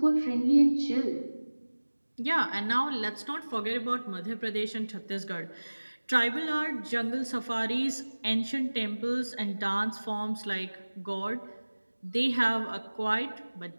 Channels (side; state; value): both; inverted; correlation -1.00